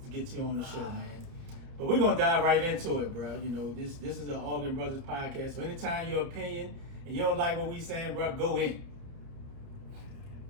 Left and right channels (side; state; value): left; late; 30 ms